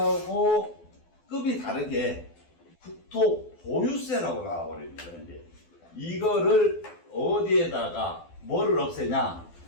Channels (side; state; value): right; late; 12 ms